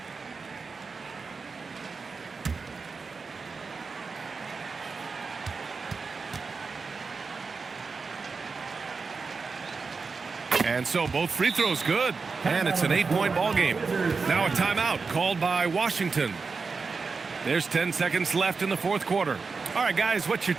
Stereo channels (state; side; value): quieter; left; 4.7 dB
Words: And so both free throws good, and it's an 8-point ball game. Now a timeout called by Washington. There's 10 seconds left in the fourth quarter. All right, guys, what's your